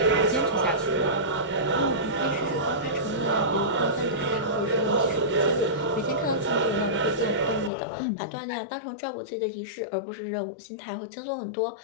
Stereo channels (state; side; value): drops out; right; at 7.7 s